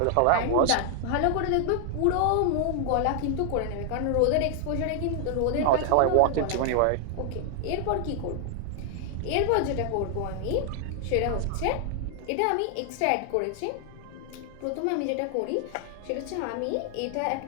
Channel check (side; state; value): both; different; correlation 0.00